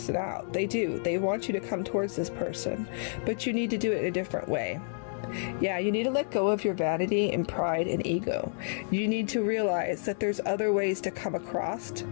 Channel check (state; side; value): silent; right; 58 dB below the other